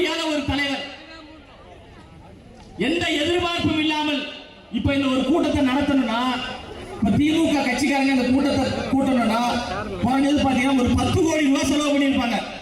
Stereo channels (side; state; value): both; identical; correlation 1.00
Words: ஒரு தலைவர். எந்த எதிர்பார்ப்பும் இல்லாமல் இப்ப இந்த ஒரு கூட்டத்தை நடத்தணும்னா, திமுக கட்சிக்காரங்க இந்த கூட்டத்தை கூட்டணும்னா பாத்தீங்கன்னா ஒரு 10 கோடி ரூபாய் செலவு பண்ணியிருப்பாங்க.